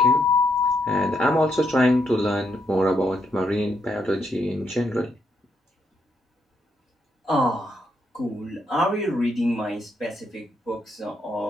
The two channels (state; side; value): normal; both; correlation 0.78